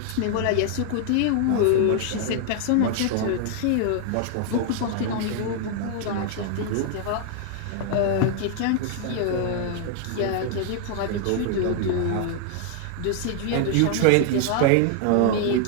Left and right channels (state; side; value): different; both; correlation 0.00